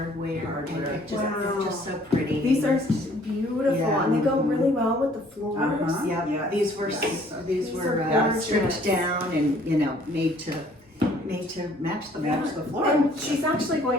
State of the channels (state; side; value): normal; both; correlation 0.59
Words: And it just, it's just so pretty. These are beautiful, Yeah. and they go really well with the floors. Yep. Yeah. These were These were are stripped gorgeous. down and made to match the floor. And she's actually